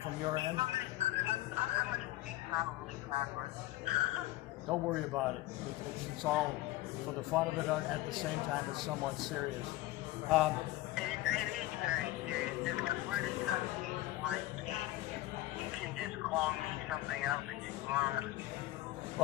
from your end. Don't worry about it. It's all for the fun of it. At the same time, it's somewhat serious. It is very serious. If we're discussing Weinstein, you can just call me something else if you want.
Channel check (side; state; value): right; quieter; 16.7 dB